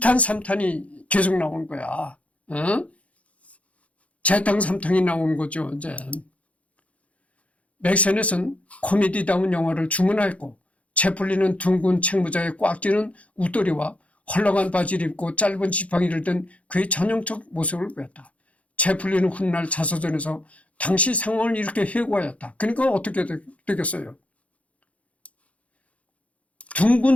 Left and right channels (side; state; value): right; late; 0.065 ms